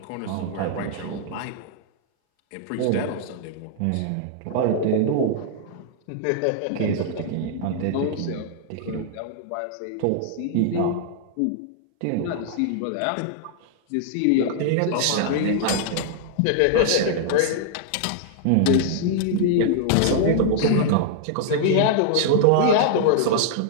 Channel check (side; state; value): both; different; correlation -0.01